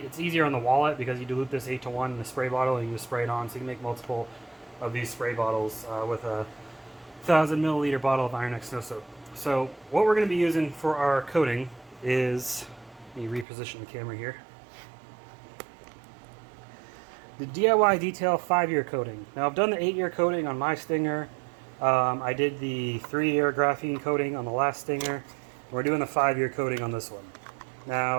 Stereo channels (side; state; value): left; drops out; at 13.5 s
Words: easier on the wallet because you dilute this 8:1 in the spray bottle and you just spray it on. So you can make multiple of these spray bottles with a 1,000 milliliter bottle of Iron X snow soap. So what we're going to be using for our coating is, let me reposition the camera here, the DIY Detail 5-year coating. Now I've done the 8-year coating on my Stinger. I did the 3-year graphene coating on the last Stinger. We're doing the 5-year coating on this one.